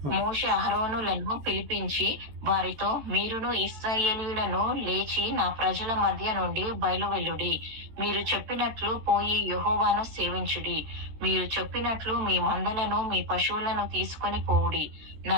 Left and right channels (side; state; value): left; late; 14 ms